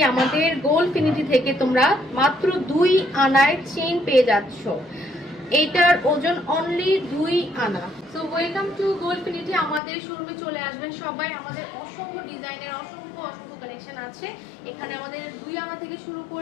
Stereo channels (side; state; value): right; drops out; at 9.8 s